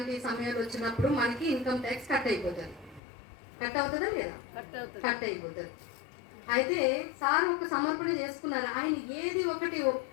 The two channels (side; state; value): right; drops out; at 3.0 s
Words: సమయాలు వచ్చినప్పుడు మనకి ఇన్కమ్ ట్యాక్స్ కట్ అయిపోతుంది. కట్ అవుతుందా లేదా? కట్ అయిపోతుంది. అయితే సార్ ఒక సమర్పణ చేసుకున్నారు. ఆయన ఏది ఒకటి